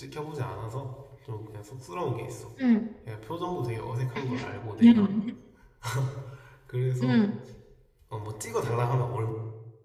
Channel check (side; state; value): both; identical; correlation 1.00